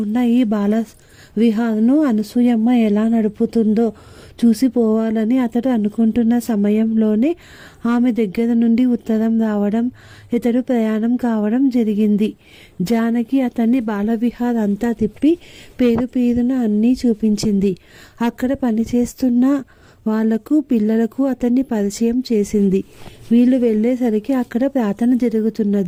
ఈ బాల విహార్ను అనసూయమ్మ ఎలా నడుపుతుందో చూసిపోవాలని అతడు అనుకుంటున్న సమయంలోనే ఆమె దగ్గర నుండి ఉత్తరం రావడం, ఇతడు ప్రయాణం కావడం జరిగింది. జానకి అతన్ని బాలవిహార్ అంతా తిప్పి పేరు పేరున అన్నీ చూపించింది. అక్కడ పనిచేస్తున్న వాళ్లకు, పిల్లలకు అతన్ని పరిచయం చేసింది. వీళ్ళు వెళ్ళేసరికి అక్కడ ప్రార్థన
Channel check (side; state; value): both; identical; correlation 1.00